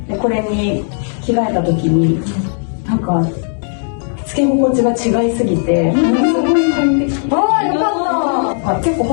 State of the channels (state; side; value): silent; right; 63 dB below the other